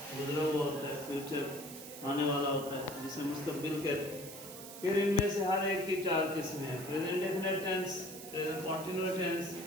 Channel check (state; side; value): noise; right; hiss, 13 dB below the sound